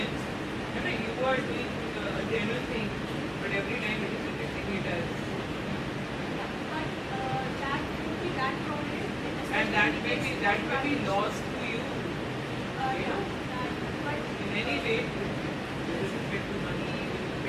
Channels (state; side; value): identical; both; correlation 1.00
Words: you are doing a genuine thing, but every time it is rejecting it as. That would be that problem. And that may be lost to you. But in any way, with respect to money, with